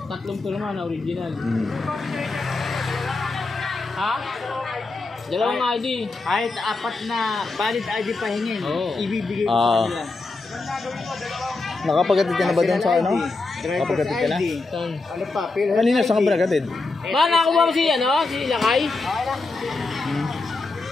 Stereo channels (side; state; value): right; quieter; 3.5 dB